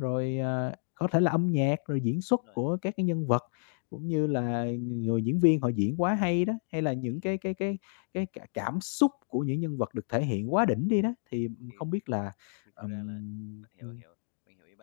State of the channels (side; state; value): right; silent; digital silence